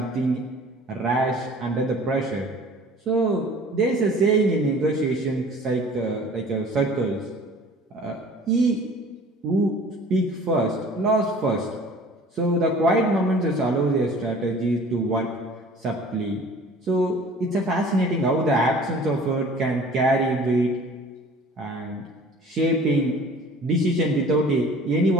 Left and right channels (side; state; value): both; normal; correlation 0.47